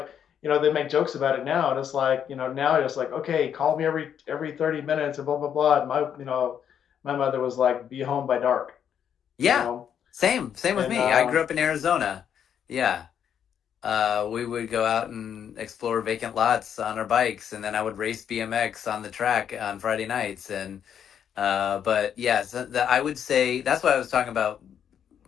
they make jokes about it now, and it's like now it's like okay, call me every 30 minutes and blah blah blah. And my mother was like, be home by dark, you Yeah. know, Same with and me. I grew up in Arizona. Yeah. We would go out and explore vacant lots on our bikes, and then I would race BMX on the track on Friday nights. And but yeah, so I would say that's why I was talking about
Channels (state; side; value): quieter; right; 8.7 dB